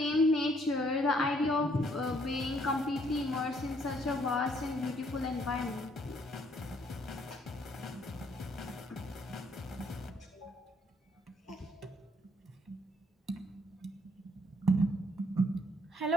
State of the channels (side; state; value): both; normal; correlation 0.67